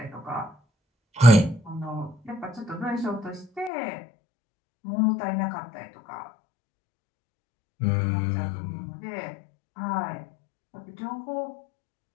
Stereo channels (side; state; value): right; drops out; at 3.7 s